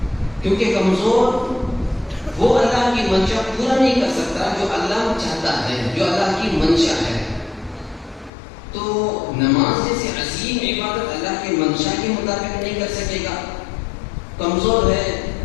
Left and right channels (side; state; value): right; drops out; at 8.3 s